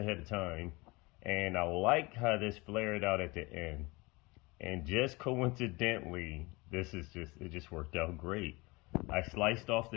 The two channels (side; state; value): right; quieter; 24.6 dB